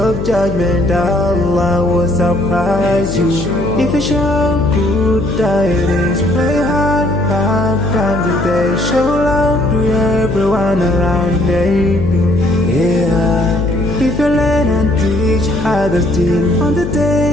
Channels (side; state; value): left; noise; hum, 6 dB below the sound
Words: judgment, Allah will surprise you. If you show good tidings, pray hard 5 times a day. Show love to everyone around you. Yeah. If you learn and teach others still on the